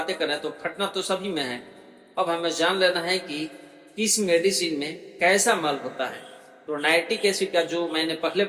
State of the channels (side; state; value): both; identical; correlation 1.00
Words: कर रहे हैं, तो फटना तो सभी में है। अब हमें जान लेना है कि किस मेडिसिन में कैसा मल होता है। तो नाइट्रिक एसिड का जो मैंने पहले